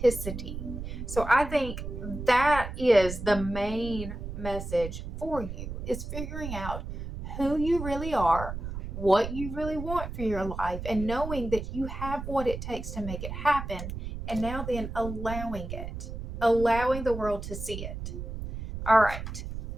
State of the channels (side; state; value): right; noise; rumble, 7 dB below the sound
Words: So I think that is the main message for you, is figuring out who you really are, what you really want for your life, and knowing that you have what it takes to make it happen. And now then allowing it, allowing the world to see it. All right.